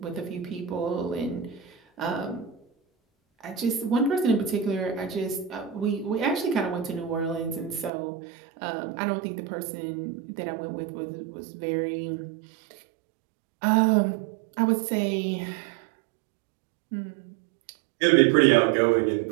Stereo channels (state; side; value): drops out; left; at 7.9 s